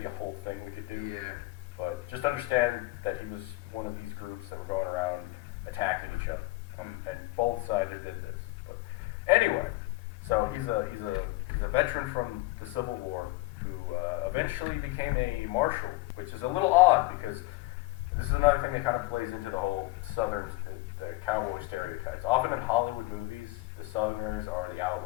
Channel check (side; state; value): right; quieter; 21.0 dB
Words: a whole thing we could do. Yeah. But just understand that he was one of these groups that were going around attacking each other. And both sides did this. But anyway, so he's a veteran from the Civil War who eventually became a marshal, which is a little odd because this is another thing that kind of plays into the whole the cowboy stereotypes. Often in Hollywood movies, the Southerners are the